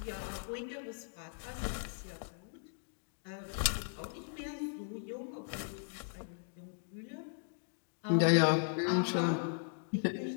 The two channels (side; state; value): right; silent; digital silence